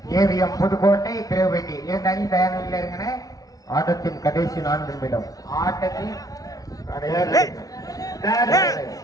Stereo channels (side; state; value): right; late; 0.18 ms